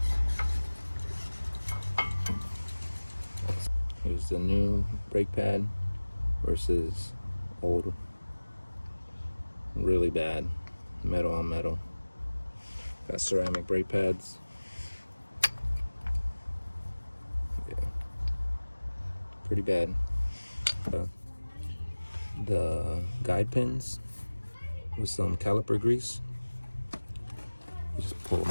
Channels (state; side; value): inverted; both; correlation -1.00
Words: Here's the new brake pad versus old. Really bad. Metal on metal. Got ceramic brake pads. Yeah. Pretty bad. The guide pins with some caliper grease. You just pull them